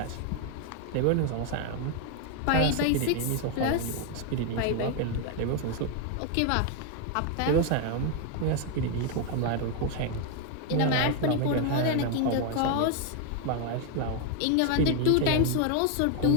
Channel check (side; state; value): both; different; correlation 0.01